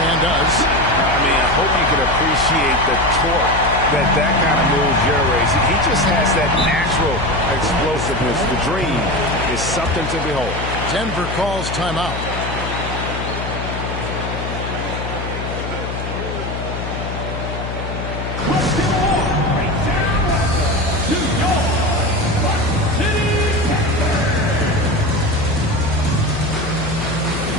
and does. I mean, I hope you can appreciate the torque that kind of move generates. He just has that natural explosiveness. The dream is something to behold. Denver calls timeout.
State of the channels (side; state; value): left; noise; hum, 6 dB below the sound